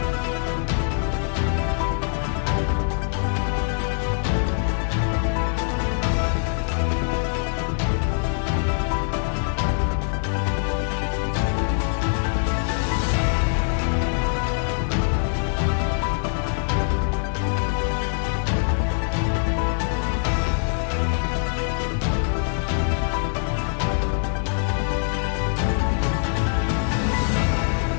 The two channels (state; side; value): silent; right; digital silence